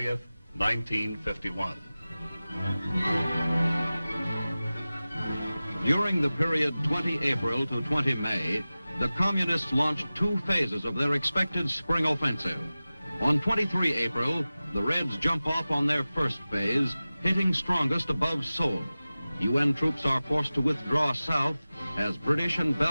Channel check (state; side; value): inverted; both; correlation -0.97